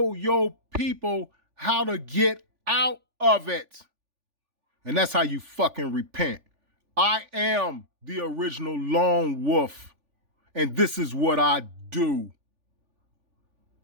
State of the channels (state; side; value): late; left; 3.4 ms